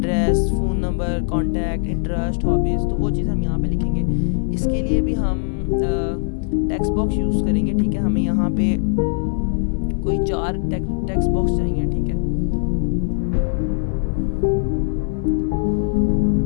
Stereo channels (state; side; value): silent; right; digital silence